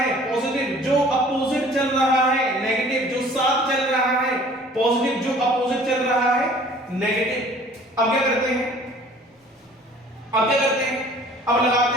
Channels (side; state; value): both; normal; correlation 0.51